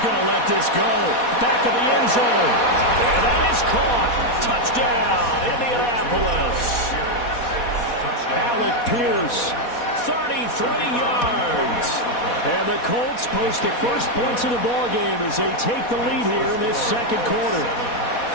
to let this go. Back of the end zone. And that is caught. Touchdown, Indianapolis. Alec Pierce, 33 yards. And the Colts post the first points of the ball game as they take the lead here in this 2nd quarter.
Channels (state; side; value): late; right; 4.2 ms